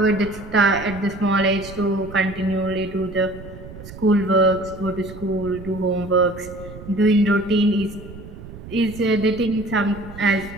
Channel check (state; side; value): noise; right; rumble, 15 dB below the sound